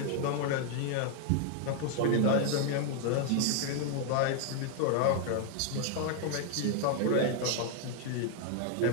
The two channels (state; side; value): different; both; correlation 0.00